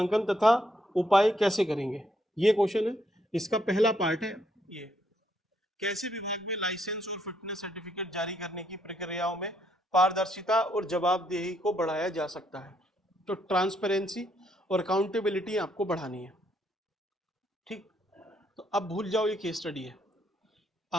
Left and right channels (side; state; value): both; normal; correlation 0.73